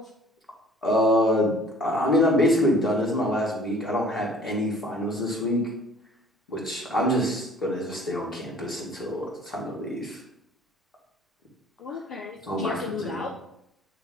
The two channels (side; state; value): both; normal; correlation 0.52